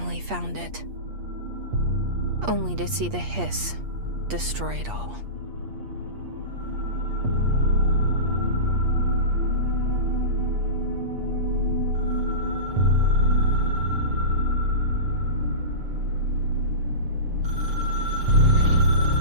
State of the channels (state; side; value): late; left; 8.5 ms